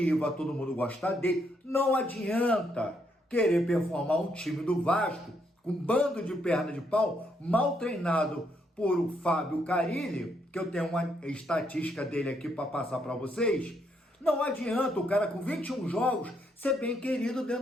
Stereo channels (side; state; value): both; normal; correlation 0.75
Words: todo mundo gosta dele. Não adianta querer performar um time do Vasco com um bando de perna de pau, mal treinado por o Fábio Carilli, que eu tenho uma estatística dele aqui para passar para vocês. Não adianta o cara com 21 jogos ser bem querido